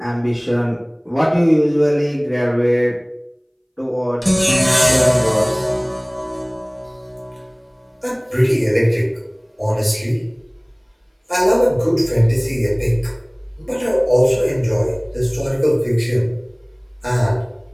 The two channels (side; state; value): both; identical; correlation 1.00